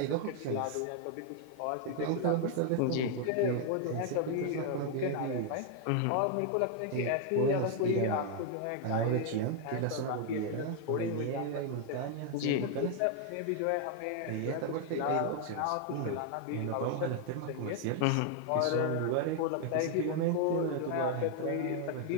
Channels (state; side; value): different; both; correlation 0.00